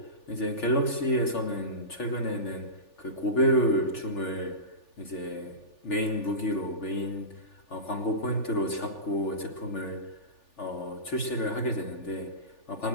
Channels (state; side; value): late; right; 3.4 ms